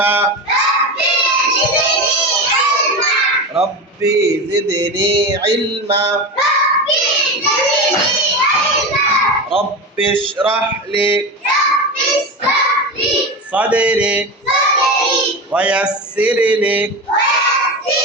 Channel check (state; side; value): normal; both; correlation 0.23